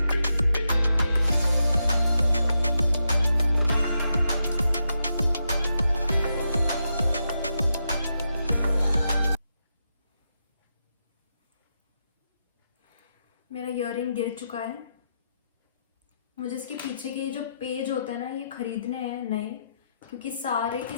मेरा ईयरिंग गिर चुका है। मुझे इसके पीछे के जो पेज होता है ना, ये खरीदने हैं नए, क्योंकि सारे के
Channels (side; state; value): both; inverted; correlation -0.84